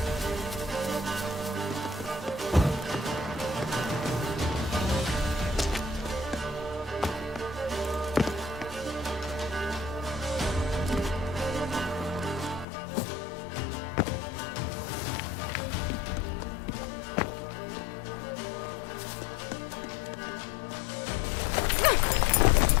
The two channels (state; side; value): drops out; right; at 12.7 s